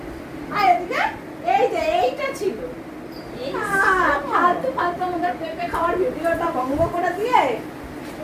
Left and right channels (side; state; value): both; identical; correlation 1.00